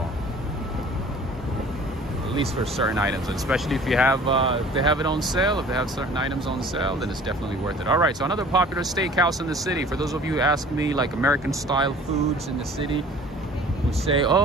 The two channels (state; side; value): normal; both; correlation 0.48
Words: At least for certain items, and especially if you have if they have it on sale, if they have certain items on sale, then it's definitely worth it. All right, so another popular steakhouse in the city. For those of you who ask me, like American style foods in the city, who say,